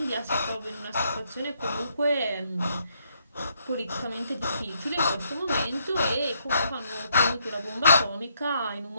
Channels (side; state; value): both; inverted; correlation -0.73